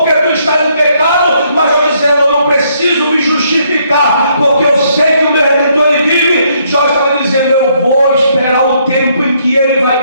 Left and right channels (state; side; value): inverted; both; correlation -0.70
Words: tu está em pecado. Mas Jó dizendo: eu não preciso me justificar, porque eu sei que o meu Redentor ele vive. Jó estava dizendo: eu vou esperar o tempo em que ele